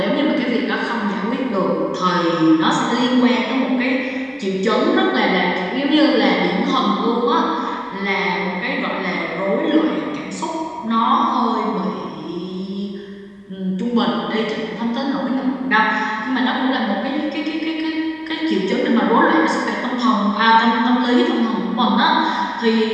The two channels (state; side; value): identical; both; correlation 1.00